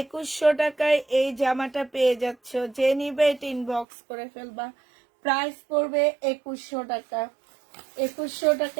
টাকায় এই জামাটা পেয়ে যাচ্ছ, যে নিবে এটা ইনবক্স করে ফেলবা। প্রাইস পড়বে 2100 টাকা। 2100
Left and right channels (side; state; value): left; drops out; at 3.9 s